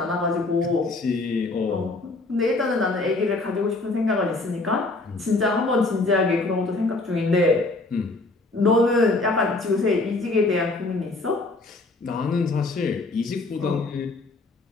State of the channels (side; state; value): right; quieter; 3.2 dB